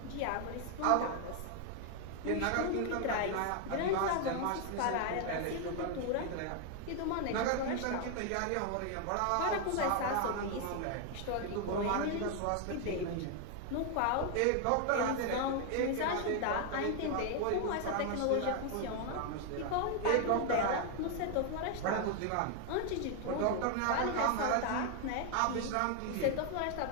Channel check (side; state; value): both; different; correlation 0.00